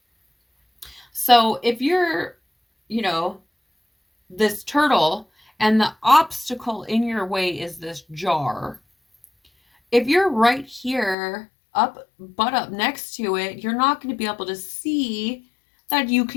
So if you're, you know, this turtle and the obstacle in your way is this jar, if you're right here butt up next to it, you're not going to be able to see that you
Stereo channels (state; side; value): drops out; right; at 11.2 s